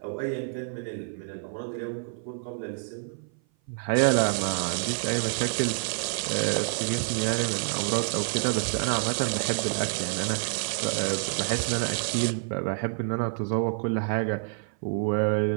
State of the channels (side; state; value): left; silent; 56 dB below the other